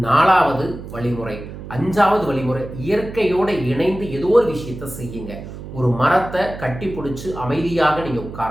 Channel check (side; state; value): right; noise; hum, 12 dB below the sound